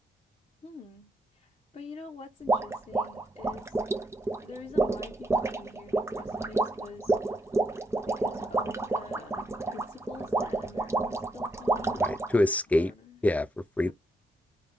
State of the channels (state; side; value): normal; both; correlation 0.77